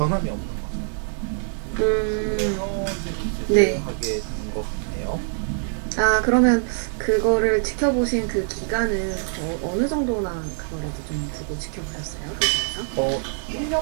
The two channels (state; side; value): silent; left; digital silence